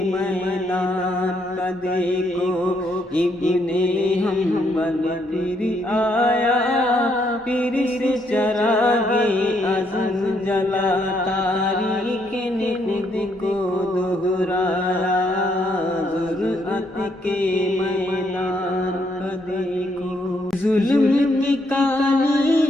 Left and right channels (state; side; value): normal; both; correlation 0.73